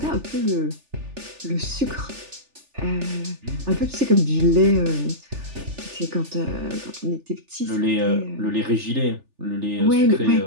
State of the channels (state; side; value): late; left; 3.4 ms